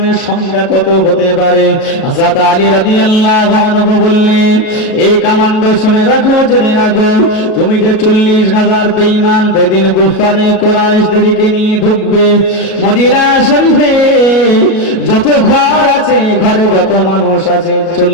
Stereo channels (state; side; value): late; right; 37 ms